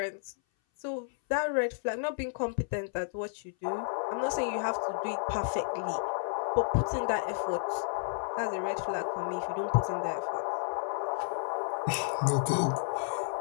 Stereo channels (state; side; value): silent; right; 57 dB below the other